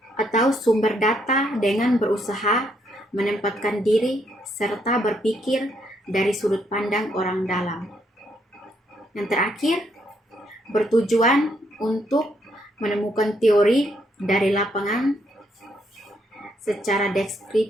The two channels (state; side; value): normal; both; correlation 0.73